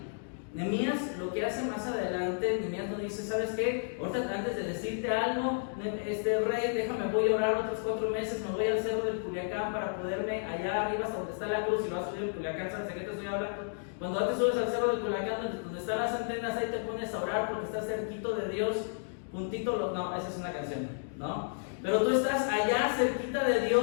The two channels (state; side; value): silent; right; digital silence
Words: Nehemías lo que hace más adelante, Nehemías no dice, ¿sabes qué? Ahorita antes de decirte algo, rey, déjame, voy a orar otros 4 meses, me voy al cerro del Culiacán para poderme allá arriba hasta donde está la cruz y lo vas a subir al Culiacán, ¿sabes de qué te estoy hablando? Cuando antes subes al cerro del Culiacán, donde están las antenas, ahí te pones a orar porque estás cerquito de Dios, puntito, no, esa es una canción, ¿no? Pero tú estás allá cerquita de